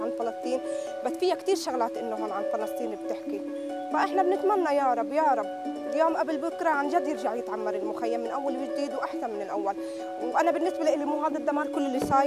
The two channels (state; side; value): identical; both; correlation 1.00